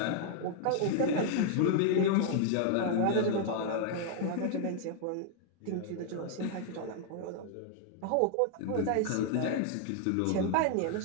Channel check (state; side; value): different; both; correlation 0.00